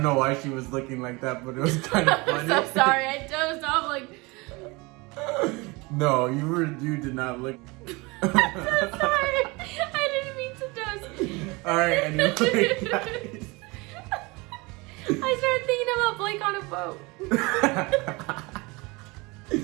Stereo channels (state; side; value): quieter; left; 25.3 dB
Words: know why she was looking like that, but it was kind of funny. I'm so sorry. I dozed off like. No, you did not look. I'm so sorry. I didn't mean to doze. All right, anyway, guys. I started thinking about Blake on a boat.